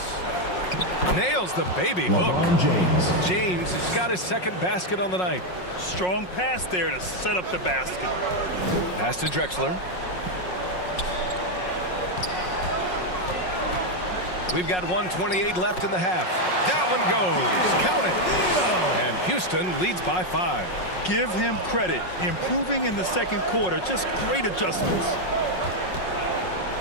Nails the baby hook. LeBron James. James has got his second basket on the night. Strong pass there to set up the basket. Pass to Drexler. We've got 1:28 left in the half. That one goes. Count it. And Houston leads by 5. Give him credit. Improving in the second quarter. Just great adjustments.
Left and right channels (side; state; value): right; late; 5.5 ms